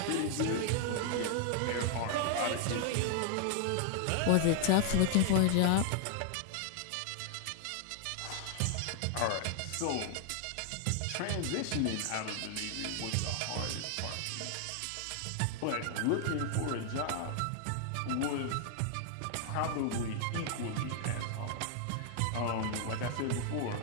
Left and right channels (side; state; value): both; different; correlation 0.00